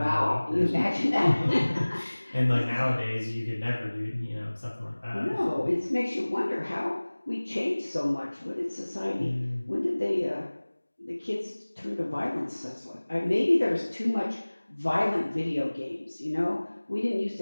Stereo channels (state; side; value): inverted; both; correlation -1.00